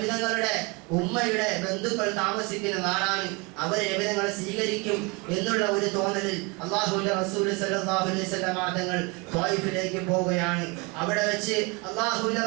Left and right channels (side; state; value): left; quieter; 28.4 dB